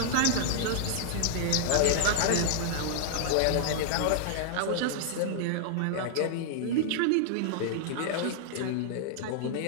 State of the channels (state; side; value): different; both; correlation -0.01